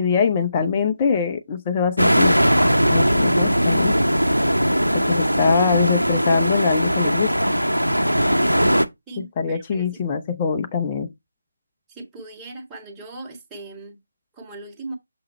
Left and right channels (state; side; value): inverted; both; correlation -0.86